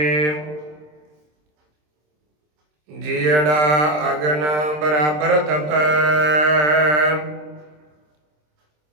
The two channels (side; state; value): left; late; 26 ms